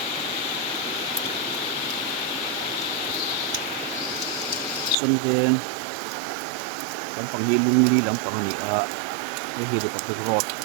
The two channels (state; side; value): drops out; left; at 5.0 s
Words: xuân về lắm bằng hi lung li lắm bằng này cái hi được cái rod